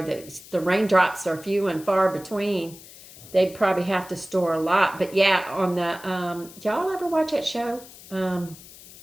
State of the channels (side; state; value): left; noise; hiss, 19 dB below the sound